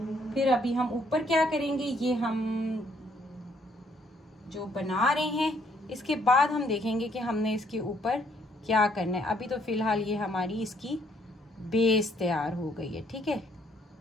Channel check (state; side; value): normal; both; correlation 0.68